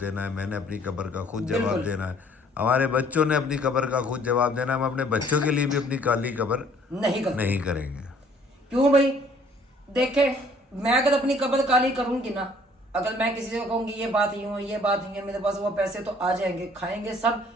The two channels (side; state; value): both; normal; correlation 0.58